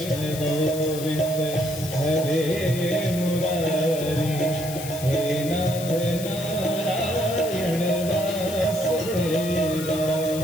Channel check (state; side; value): noise; left; hiss, 10 dB below the sound